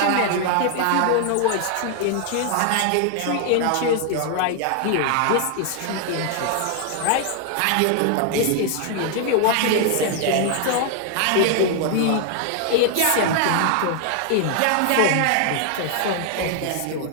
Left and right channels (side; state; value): both; different; correlation 0.00